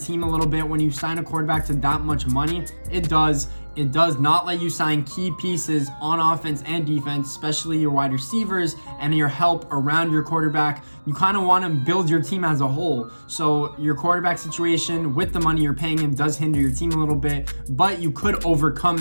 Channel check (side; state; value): both; inverted; correlation -1.00